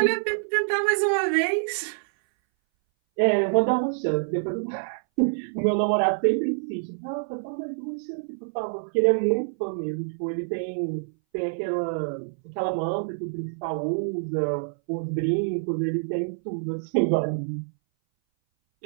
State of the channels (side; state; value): left; silent; 59 dB below the other